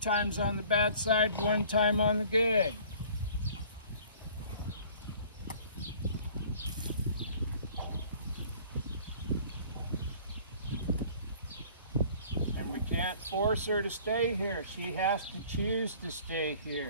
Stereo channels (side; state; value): both; inverted; correlation -0.51